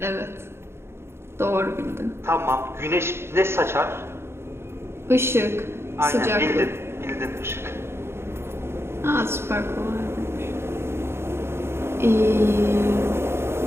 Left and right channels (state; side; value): late; left; 0.12 ms